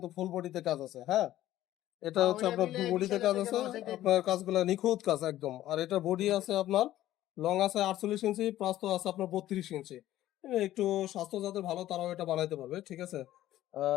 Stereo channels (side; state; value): right; quieter; 13.9 dB